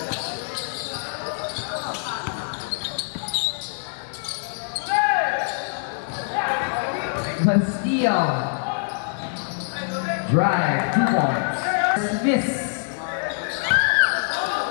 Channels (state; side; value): silent; right; digital silence